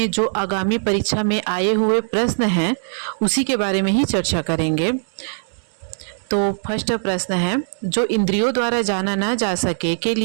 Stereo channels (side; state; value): left; silent; digital silence